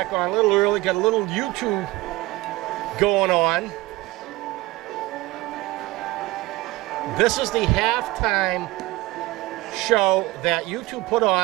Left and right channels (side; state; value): left; quieter; 19.9 dB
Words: on a little early, got a little YouTube going on. This is the halftime show that YouTube put